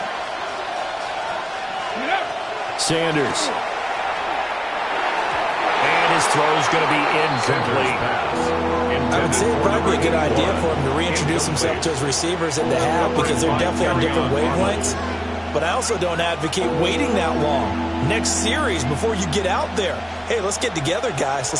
Sanders. And his throw is going to be incomplete. I would say it'd probably be a good idea for him to reintroduce himself to his receivers at the half because they're definitely on different wavelengths. But I also don't advocate waiting that long. Next series before you get out there. Hey, let's get together, guys.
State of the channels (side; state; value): both; identical; correlation 1.00